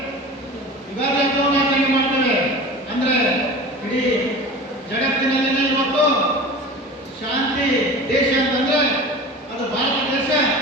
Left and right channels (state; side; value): normal; both; correlation 0.35